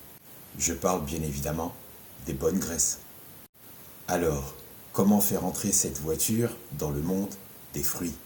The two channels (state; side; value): identical; both; correlation 1.00